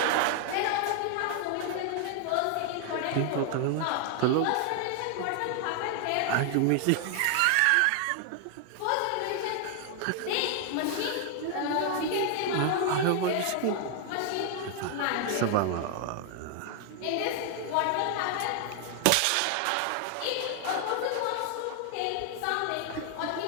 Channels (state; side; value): different; both; correlation 0.00